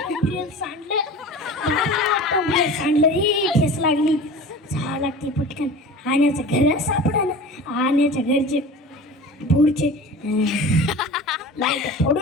सांडलं सांडलं रे ठेस लागली. जावं लागते पटकन आण्याचं घर सापडा ना. आण्याच्या घरचे पुढचे लाईट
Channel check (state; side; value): normal; both; correlation 0.37